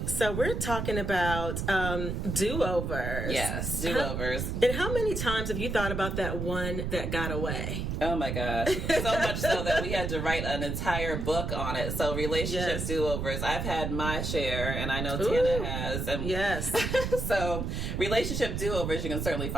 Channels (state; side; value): noise; right; rumble, 2 dB below the sound